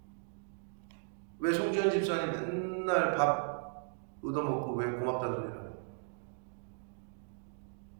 왜 송지현 집사님 맨날 밥 얻어먹고 왜 고맙다는 소리를 하냐?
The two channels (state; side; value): silent; left; digital silence